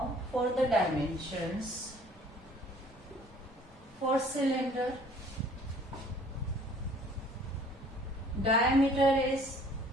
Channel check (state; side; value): normal; both; correlation 0.54